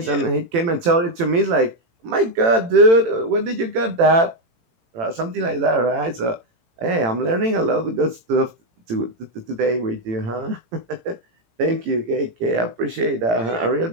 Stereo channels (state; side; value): late; left; 18 ms